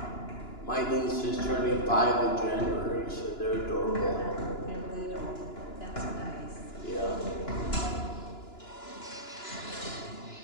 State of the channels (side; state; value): right; late; 2.9 ms